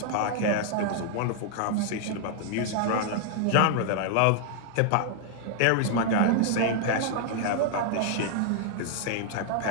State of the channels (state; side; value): different; both; correlation 0.00